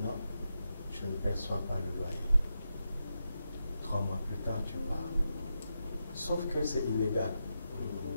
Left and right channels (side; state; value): both; inverted; correlation -0.87